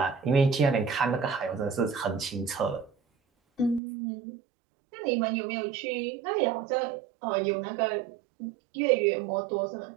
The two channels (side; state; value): left; drops out; at 3.8 s